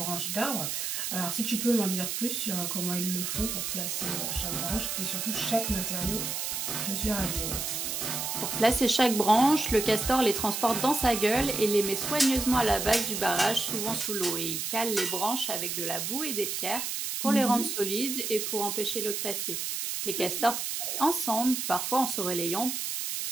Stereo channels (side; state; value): right; noise; hiss, 2 dB below the sound